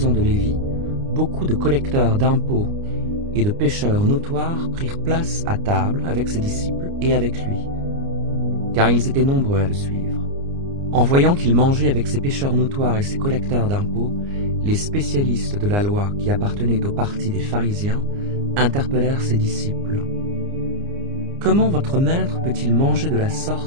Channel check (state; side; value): late; left; 29 ms